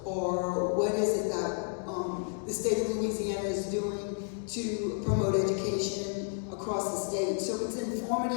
or what is it that the state of Louisiana is doing to promote education across the state. So it's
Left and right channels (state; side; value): silent; right; 57 dB below the other